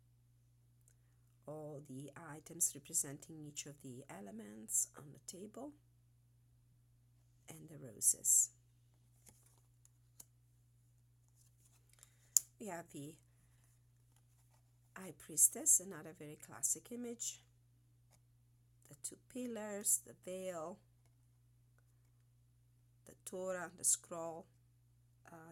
all the items representing each of the elements on the table, and the roses. We have the High Priestess, another very classic image, the two pillars, the veil, the Torah, the scroll,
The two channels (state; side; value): normal; both; correlation 0.94